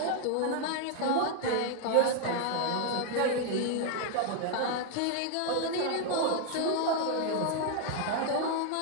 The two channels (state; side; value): different; both; correlation 0.00